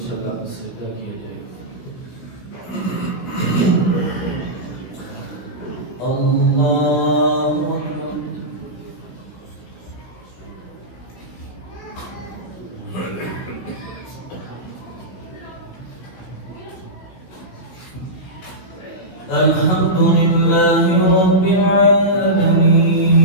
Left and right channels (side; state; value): right; late; 16 ms